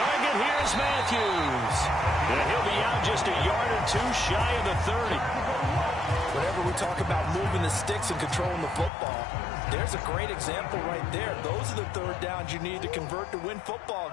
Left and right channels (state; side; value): drops out; right; at 8.9 s